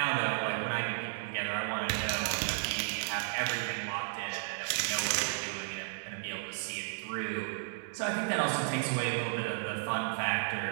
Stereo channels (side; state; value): left; silent; digital silence